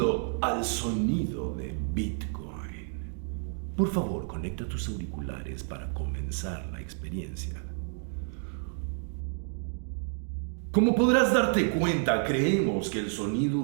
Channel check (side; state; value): left; silent; 57 dB below the other